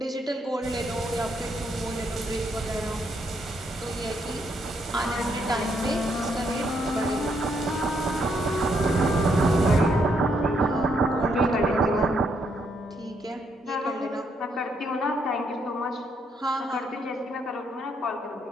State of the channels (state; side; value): normal; both; correlation 0.75